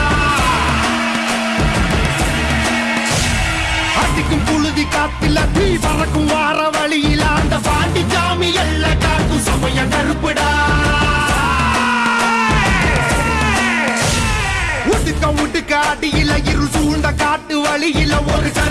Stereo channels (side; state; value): both; identical; correlation 1.00